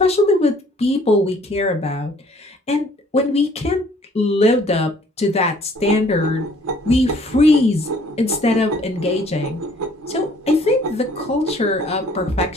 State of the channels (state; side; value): normal; both; correlation 0.58